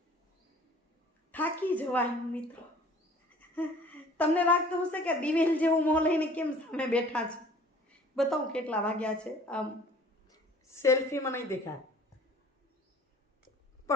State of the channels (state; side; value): normal; both; correlation 0.51